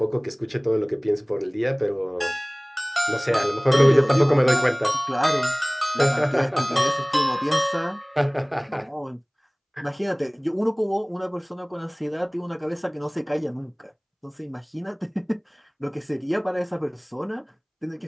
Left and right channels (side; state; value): both; identical; correlation 1.00